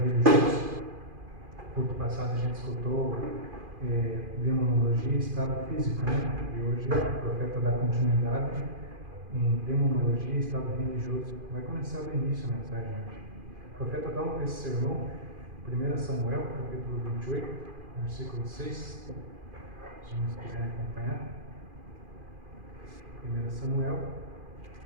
No culto passado a gente escutou Demonologia e Estado Físico, né? E hoje o profeta dá continuidade em Demonologia e Estado Religioso. Vai começar do início a mensagem hoje. O profeta toma esse sermão, 1 Samuel, capítulo 28, versículo 6. Se vocês quiserem acompanhar. 1 Samuel,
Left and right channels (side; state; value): left; late; 2.4 ms